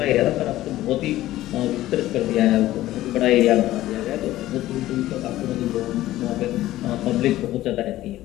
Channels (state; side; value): quieter; right; 15.2 dB